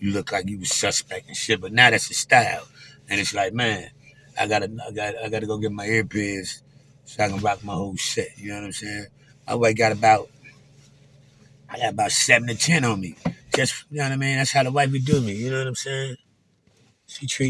look like you was suspect and shit. But now that's the style. And it's like, man, I gotta go get my earpiece so I can rock my whole set. You know what I'm saying? My wife I got about 7 to 10 on me. Just, you know what I mean? That's how the wife would do me. You know what I'm saying? She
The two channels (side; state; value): both; identical; correlation 1.00